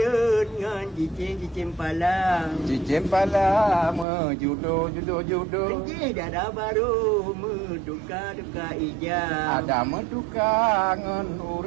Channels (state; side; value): drops out; left; at 4.0 s